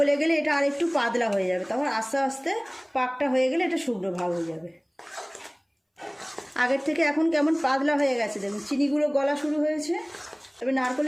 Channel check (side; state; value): both; identical; correlation 1.00